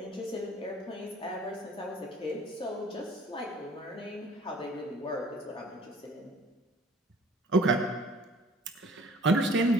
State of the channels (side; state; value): both; normal; correlation 0.52